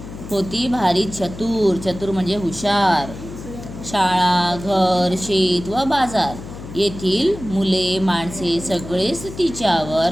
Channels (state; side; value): noise; left; hum, 12 dB below the sound